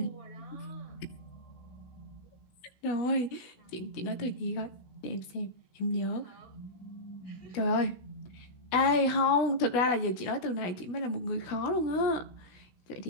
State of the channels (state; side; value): late; right; 16 ms